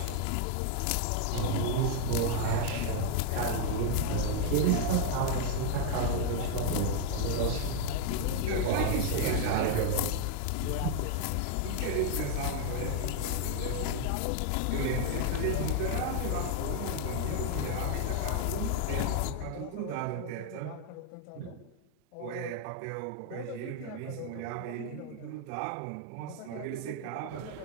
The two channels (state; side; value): different; both; correlation 0.00